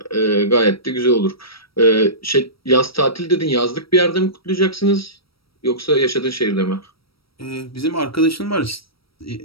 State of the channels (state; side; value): late; right; 0.75 ms